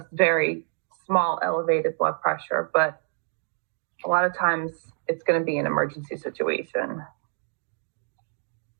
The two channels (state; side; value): silent; left; 60 dB below the other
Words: very small elevated blood pressure, but a lot of times it's going to be an emergency situation.